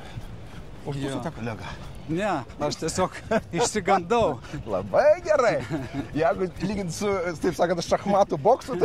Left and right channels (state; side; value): identical; both; correlation 1.00